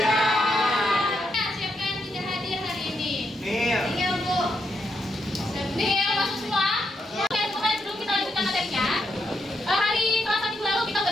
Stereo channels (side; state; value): both; normal; correlation 0.80